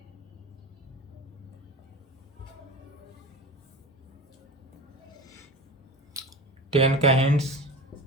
टेन का hints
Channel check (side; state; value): both; normal; correlation 0.30